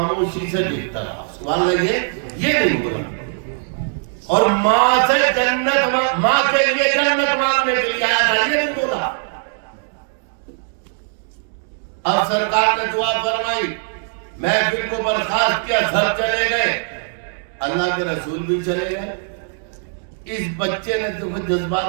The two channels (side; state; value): left; silent; 60 dB below the other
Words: سے دیکھتا رہا۔ سبحان اللہ، یہ نہیں بولا، اور ماں سے جنت، ماں کے لیے جنت مانگنے کے لیے آیا تھا، یہ نہیں بولا۔ اب سرکار نے دعا فرمائی، محفل کو برخاست کیا، سب چلے گئے، اللہ کے رسول بھی چلے گئے۔ اس بچے نے تو